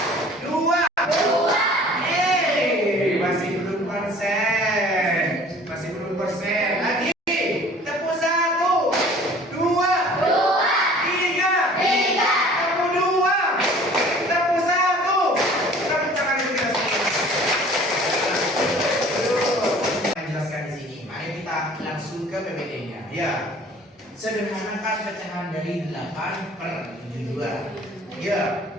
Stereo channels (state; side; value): normal; both; correlation 0.49